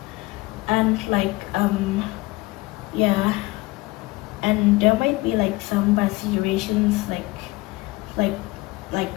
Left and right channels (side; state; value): right; quieter; 21.6 dB